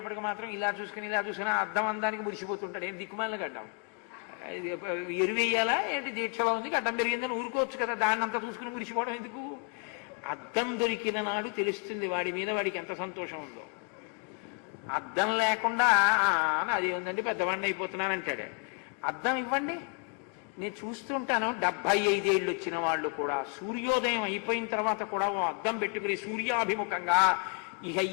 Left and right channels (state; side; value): quieter; right; 38.8 dB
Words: మాత్రం ఇలా చూసుకుని అద్దం అందానికి మురిసిపోతుంటాడు. ఏంటి దిక్కుమాలిన గడ్డం ఎరువేయాలా ఏంటి? దీక్షలో ఉంది గడ్డం పెరిగిందని ఊరుకోవచ్చు కదా, దాన్ని అంతా చూసుకుని మురిసిపోవడం ఎందుకు? అద్దం దొరికిన నాడు తెలుస్తుంది వాడి మీద వాడికి ఎంత సంతోషం ఉందో. అద్దం లేకుండా అది ఉందండి పెద్దవాడిని అయిపోతున్నాను అంటాడు. అద్దం ఇవ్వండి, నేను చూస్తుంటాను 75 ఏళ్ళు వచ్చిన వాళ్ళు కూడా సూర్యోదయం అయిపోయిన తర్వాత కూడా ఓ అద్దం పెట్టుకుని సూర్యాభిముఖంగా ఇక